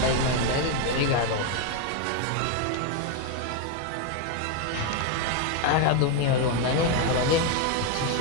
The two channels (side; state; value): both; different; correlation 0.01